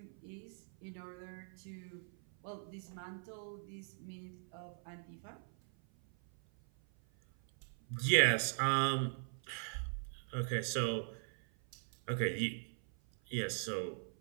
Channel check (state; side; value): silent; left; 51 dB below the other